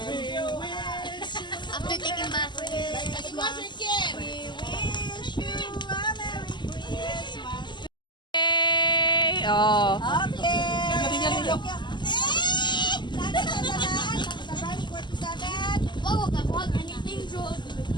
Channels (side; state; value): right; late; 0.22 ms